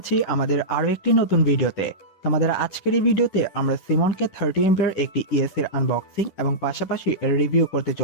আমাদের আরো একটি নতুন ভিডিওতে। তোমাদের আজকের এই ভিডিওতে আমরা সিমনকে 30 এর একটি ইএসসি এর আনবক্সিং এবং পাশাপাশি এর রিভিউ করতে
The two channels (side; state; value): right; late; 10 ms